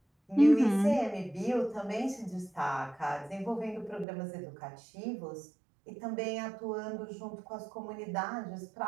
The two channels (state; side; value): drops out; left; at 4.0 s